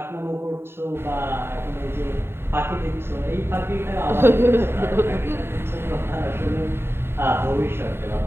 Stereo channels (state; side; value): late; left; 0.11 ms